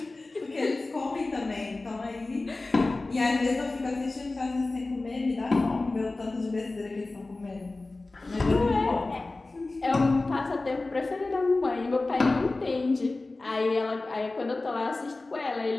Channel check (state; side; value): quieter; right; 3.2 dB